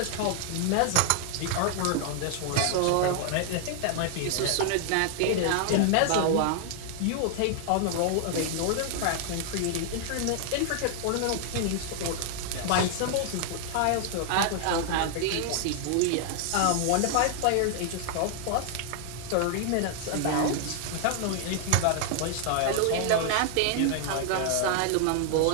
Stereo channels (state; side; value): different; both; correlation 0.00